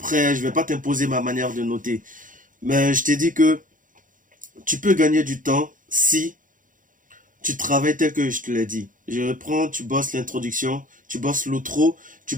je ne vais pas t'imposer ma manière de noter. Mais je t'ai dit que tu peux gagner du temps si tu travailles tel que je te l'ai dit. Je reprends, tu bosses l'introduction, tu bosses l'outro, tu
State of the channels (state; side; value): late; left; 0.39 ms